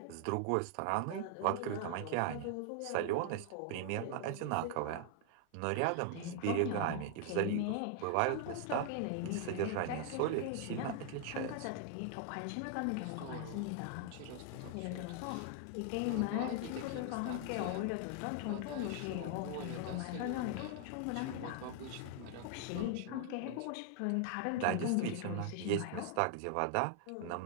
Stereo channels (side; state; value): both; different; correlation 0.00